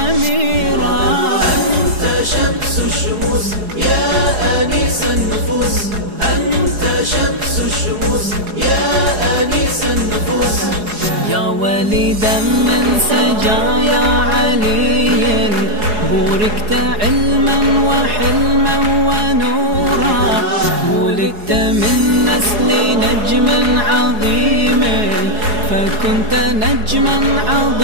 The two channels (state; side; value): late; left; 4.8 ms